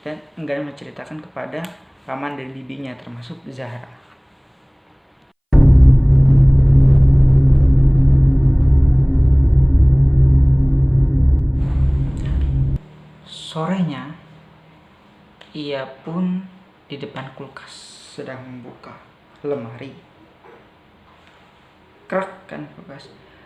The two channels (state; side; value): identical; both; correlation 1.00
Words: Dan enggan menceritakan kepada paman dan bibinya termasuk Zahra. Sorenya, ia pun di depan kulkas sedang membuka lemari. Krek kan kulkas.